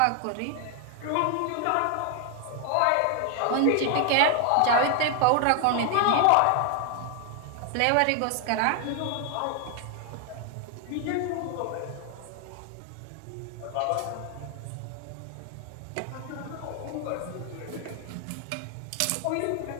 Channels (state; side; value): different; both; correlation 0.00